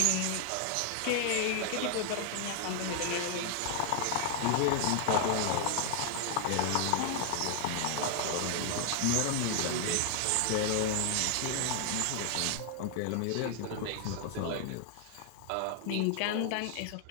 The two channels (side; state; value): both; different; correlation 0.00